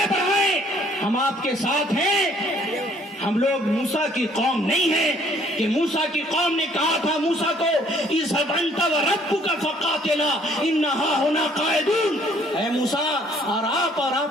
بڑھائیں، ہم آپ کے ساتھ ہیں. ہم لوگ موسیٰ کی قوم نہیں ہیں کہ موسیٰ کی قوم نے کہا تھا موسیٰ کو اذهب انت وربك فقاتلا انہا ہونا قائدون، اے موسیٰ اور آپ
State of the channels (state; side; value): normal; both; correlation 0.61